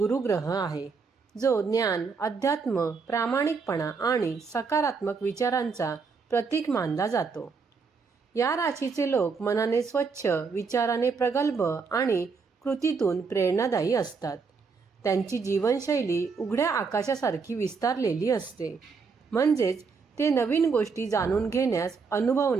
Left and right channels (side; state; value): left; quieter; 5.0 dB